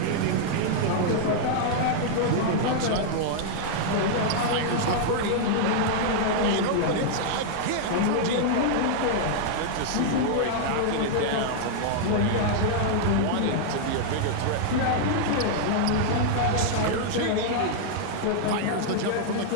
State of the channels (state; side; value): different; both; correlation -0.01